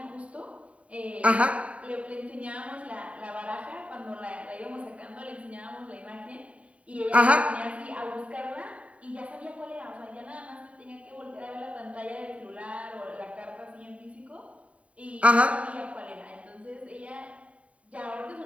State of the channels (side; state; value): left; late; 0.065 ms